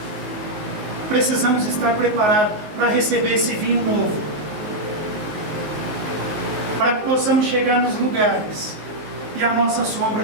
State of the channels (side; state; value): left; late; 19 ms